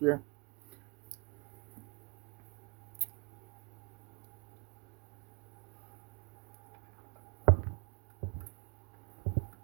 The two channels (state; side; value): quieter; left; 29.7 dB